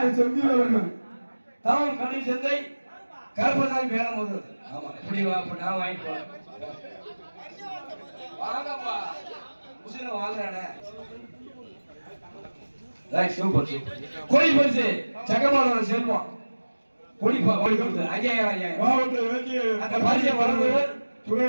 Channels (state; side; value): inverted; both; correlation -1.00